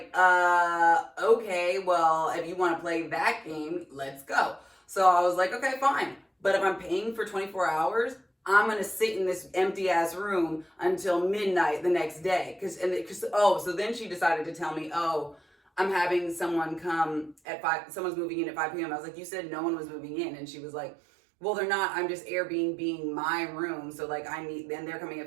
okay, well, if you want to play that game, let's go. So I was like, okay, fine. But if I'm paying for 24 hours, I'm going to sit in this empty ass room until midnight the next day. So then she decided to tell me, I'm having someone come at 5, someone's moving in at 5 p.m. I was like, you said no one was moving in. And she was like, well, they're not, I'm just Airbnb my room. So like then they're coming at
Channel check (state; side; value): drops out; left; at 17.4 s